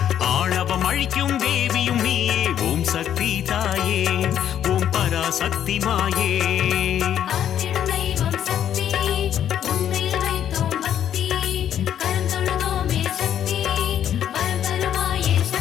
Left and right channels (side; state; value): right; quieter; 10.0 dB